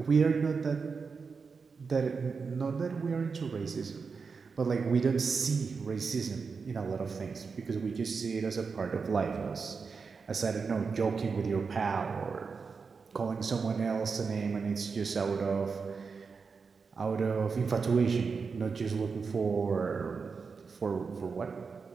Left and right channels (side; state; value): left; quieter; 5.1 dB